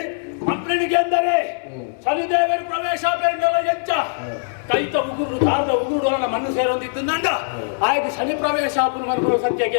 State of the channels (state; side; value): silent; right; digital silence